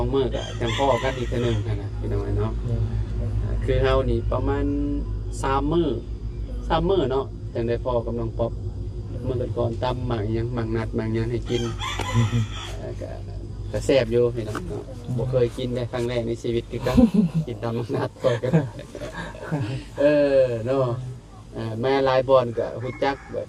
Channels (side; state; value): both; identical; correlation 1.00